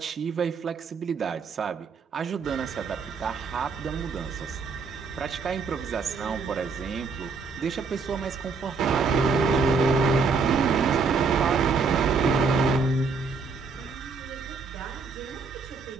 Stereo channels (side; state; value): left; quieter; 4.8 dB